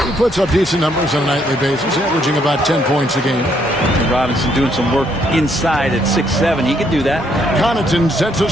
He puts up decent numbers on a nightly basis, averaging about 10 points a game. And Robinson doing some work inside at 6'7". He could do that. Connaughton sets a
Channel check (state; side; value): normal; both; correlation 0.71